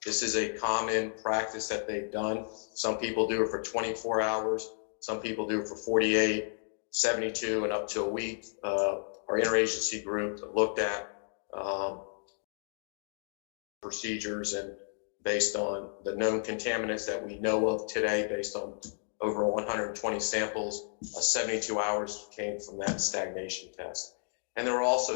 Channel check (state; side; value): silent; right; digital silence